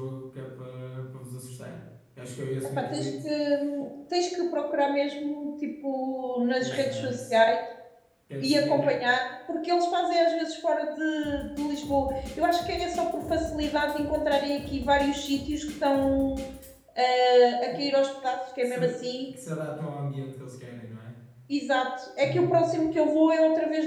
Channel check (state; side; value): identical; both; correlation 1.00